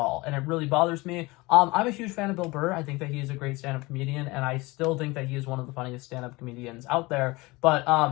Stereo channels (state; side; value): quieter; right; 22.8 dB